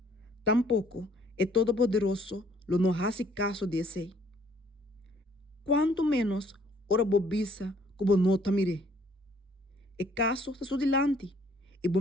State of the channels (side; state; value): both; normal; correlation 0.61